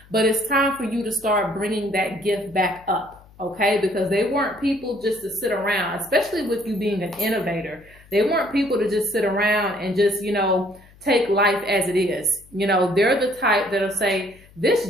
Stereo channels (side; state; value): left; noise; hum, 26 dB below the sound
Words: but it's time for you to start bringing that gift back up, okay? Because they weren't people just to sit around, especially with you being an innovator. They weren't people to just sit around and just, you know, take life as it is. You know, they're the type that'll say,